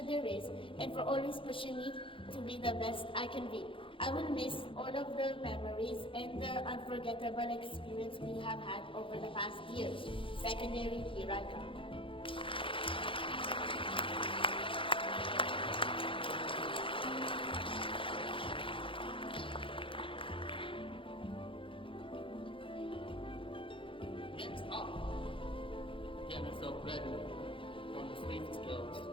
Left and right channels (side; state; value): right; late; 0.25 ms